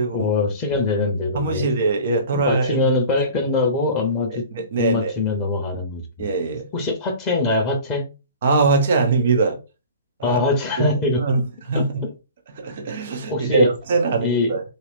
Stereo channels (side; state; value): both; inverted; correlation -0.41